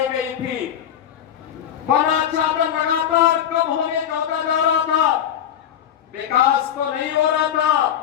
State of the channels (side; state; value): right; quieter; 9.8 dB